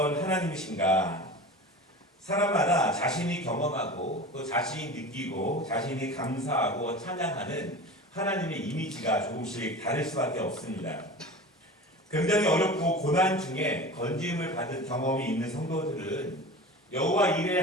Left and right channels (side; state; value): both; normal; correlation 0.34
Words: 하나님이신가? 사람마다 자신이 경험하고 또 자신이 느끼고 자신이 감사하고 찬양하는 하나님의 이미지가 조금씩 다를 수밖에 없습니다. 굉장히 어렵고 고난 중에 건짐을 받은 경험이 있는 성도들은 여호와 이레